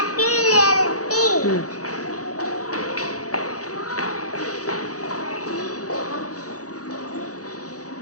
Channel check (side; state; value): right; late; 0.66 ms